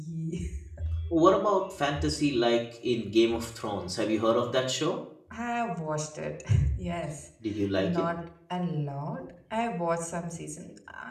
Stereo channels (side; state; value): both; identical; correlation 1.00